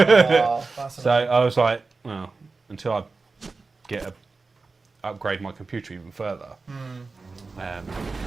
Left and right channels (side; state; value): left; quieter; 4.0 dB